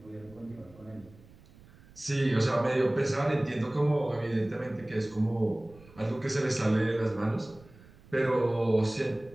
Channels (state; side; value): noise; right; rumble, 24 dB below the sound